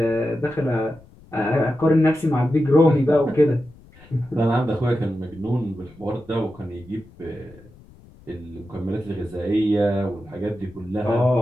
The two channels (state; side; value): noise; left; rumble, 24 dB below the sound